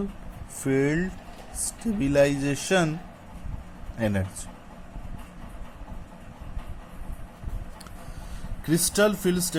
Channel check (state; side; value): identical; both; correlation 1.00